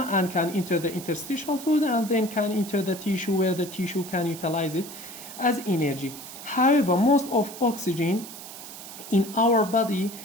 and can enter the interstitial fluid and then can enter the tissue where the tissue can utilize it as energy. However, most of oxygen in our body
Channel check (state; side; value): noise; right; hiss, 13 dB below the sound